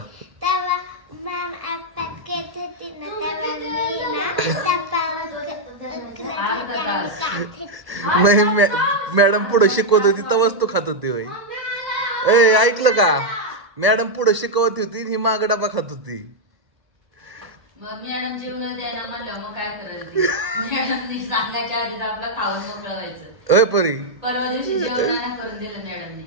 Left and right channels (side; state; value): left; late; 1.0 ms